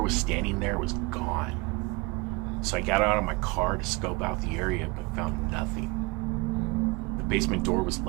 was standing there was gone. So I got out of my car to scope out the area but found nothing. The basement door was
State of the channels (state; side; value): quieter; left; 26.2 dB